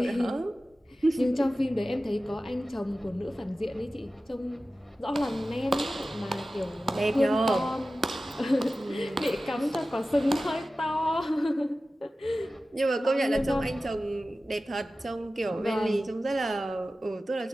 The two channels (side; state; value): both; normal; correlation 0.95